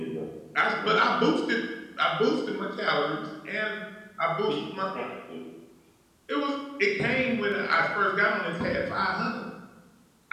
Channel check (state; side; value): identical; both; correlation 1.00